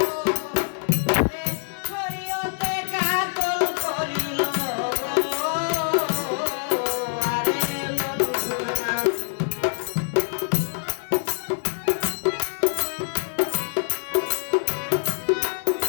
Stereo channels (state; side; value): silent; right; digital silence